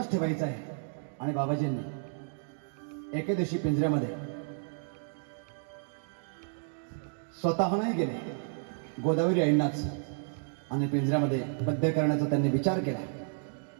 ठेवायचं आहे. आणि बाबाजींनी एके दिवशी पिंजऱ्यामध्ये स्वतः नाही गेले, गोदावरी आईंनाच आणि पिंजऱ्यामध्ये बद्ध करण्याचा त्यांनी विचार केला.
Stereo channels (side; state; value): left; silent; 57 dB below the other